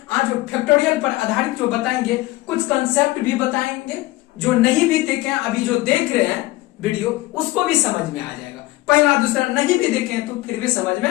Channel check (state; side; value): quieter; right; 18.9 dB